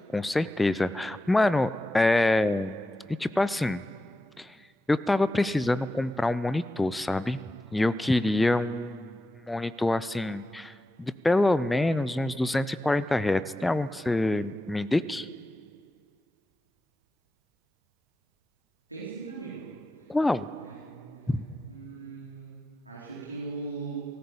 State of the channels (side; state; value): both; normal; correlation 0.92